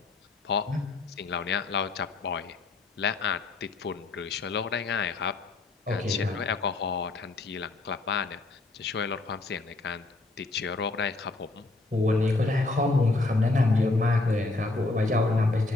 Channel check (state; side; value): quieter; right; 3.3 dB